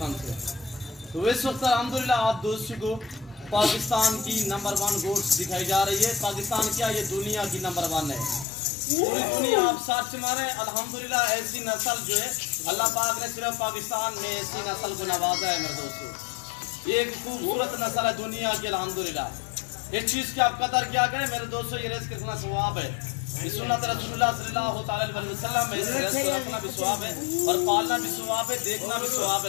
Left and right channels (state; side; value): drops out; right; at 8.5 s